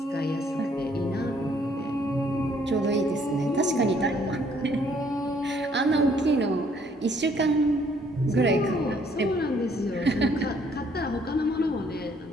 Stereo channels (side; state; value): both; normal; correlation 0.64